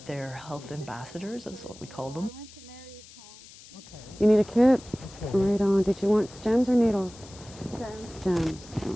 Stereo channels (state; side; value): noise; left; hiss, 20 dB below the sound